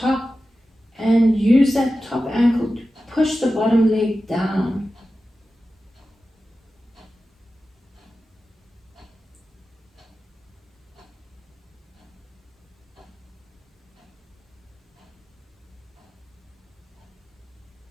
and use that top ankle to push the bottom leg down.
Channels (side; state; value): both; normal; correlation 0.94